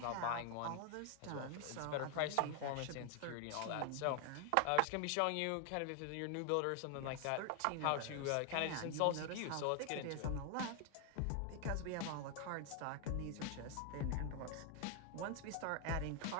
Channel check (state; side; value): different; both; correlation 0.00